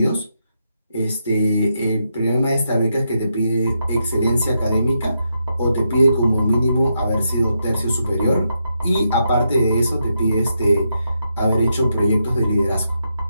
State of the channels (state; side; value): inverted; both; correlation -0.82